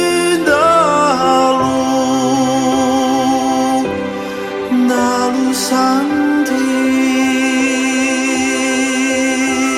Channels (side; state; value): both; identical; correlation 1.00